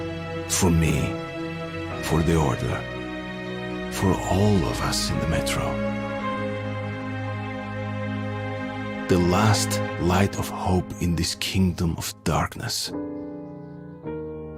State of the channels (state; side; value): identical; both; correlation 1.00